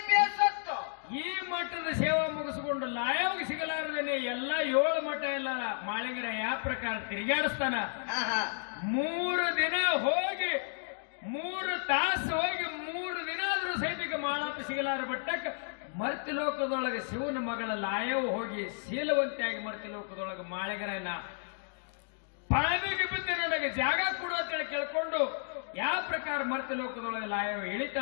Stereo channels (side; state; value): right; silent; digital silence